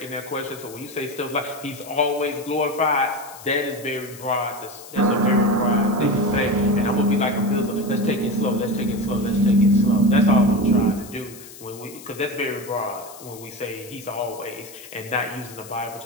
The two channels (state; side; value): noise; left; hiss, 17 dB below the sound